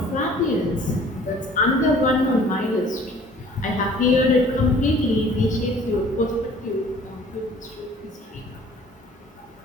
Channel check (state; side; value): normal; both; correlation 0.52